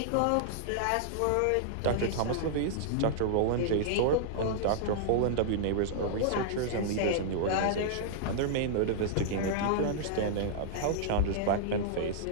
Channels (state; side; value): different; both; correlation -0.01